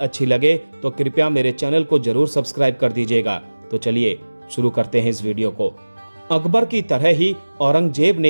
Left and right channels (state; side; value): inverted; both; correlation -1.00